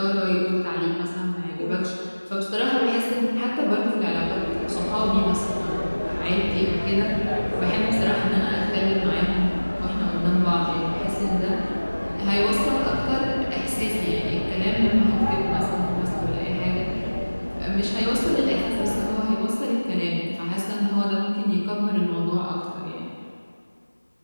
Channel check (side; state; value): both; inverted; correlation -1.00